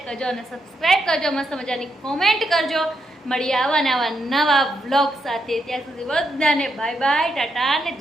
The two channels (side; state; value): both; normal; correlation 0.81